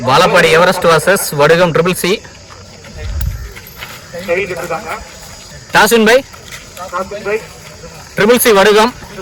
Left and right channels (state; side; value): identical; both; correlation 1.00